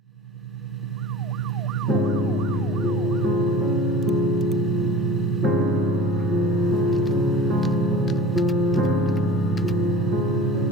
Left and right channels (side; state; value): both; normal; correlation 0.39